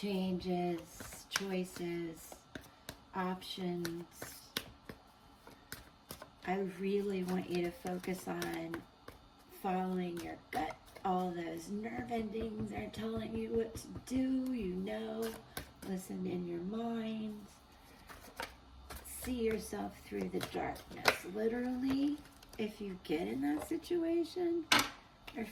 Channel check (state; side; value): identical; both; correlation 1.00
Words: choices, options. I really want you to focus on following your gut. All those nerve endings are telling you what to do, listen in your mind. See yourself through the darkness. Literally, if you get in that situation, or